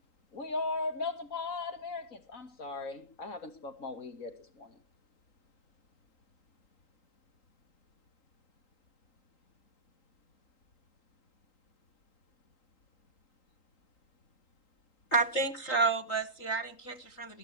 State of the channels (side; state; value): right; late; 3.8 ms